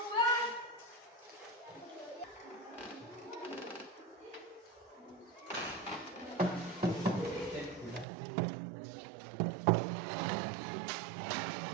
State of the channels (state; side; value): drops out; left; at 8.1 s